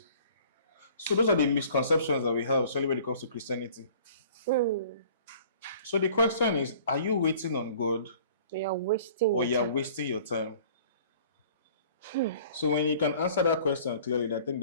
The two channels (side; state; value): both; inverted; correlation -0.51